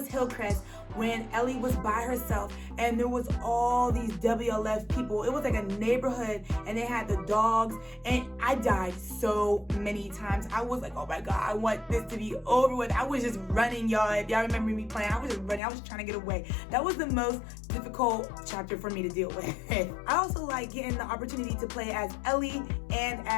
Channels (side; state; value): right; drops out; at 15.6 s